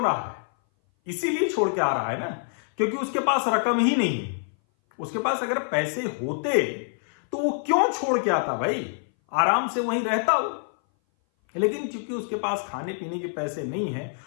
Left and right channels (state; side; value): silent; right; 58 dB below the other